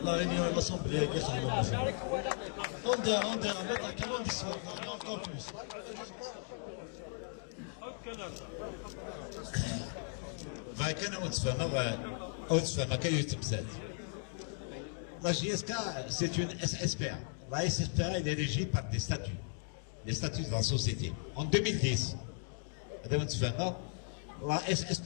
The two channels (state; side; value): silent; right; 53 dB below the other